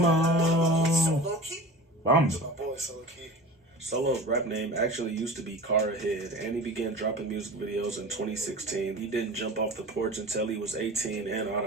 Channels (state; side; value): normal; both; correlation 0.36